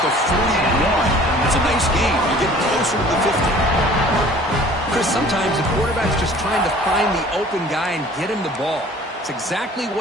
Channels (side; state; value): both; normal; correlation 0.49